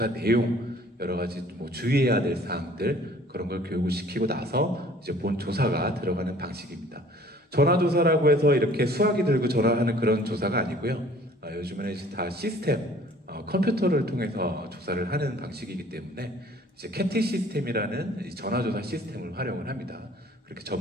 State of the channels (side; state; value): both; normal; correlation 0.53